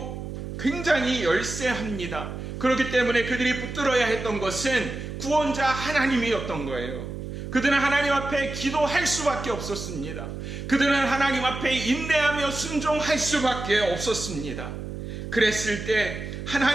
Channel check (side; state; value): right; noise; hum, 7 dB below the sound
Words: 굉장히 열세합니다. 그렇기 때문에 그들이 붙들어야 했던 것은 구원자 하나님이었던 거예요. 그들은 하나님 앞에 기도할 수밖에 없었습니다. 그들은 하나님 앞에 인내하며 순종할 수밖에 없었습니다. 그랬을 때